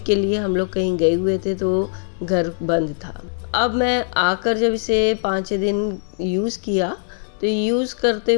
के लिए हम लोग कहीं गए हुए थे तो घर बंद था। अब मैं आकर जब इसे 5-6 दिन यूज़ किया तो यूज़ करते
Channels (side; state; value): right; silent; digital silence